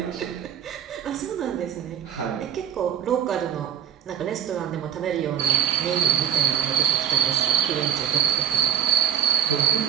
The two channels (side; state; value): left; quieter; 9.6 dB